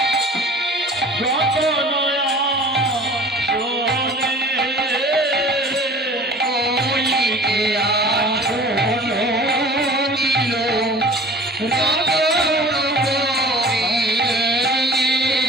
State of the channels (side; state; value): both; normal; correlation 0.44